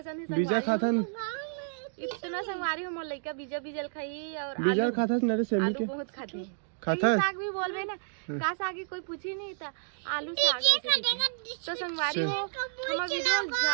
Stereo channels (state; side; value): silent; left; digital silence